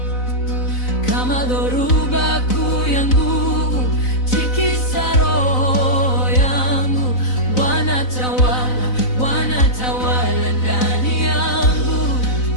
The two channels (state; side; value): late; right; 4.0 ms